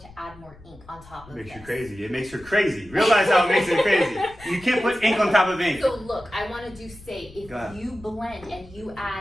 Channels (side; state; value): left; noise; rumble, 21 dB below the sound